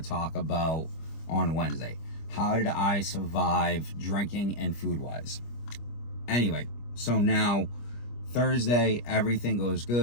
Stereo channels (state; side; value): late; right; 25 ms